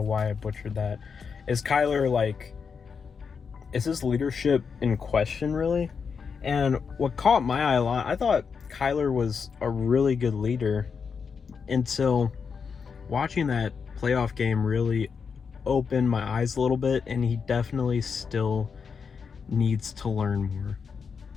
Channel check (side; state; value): right; quieter; 5.9 dB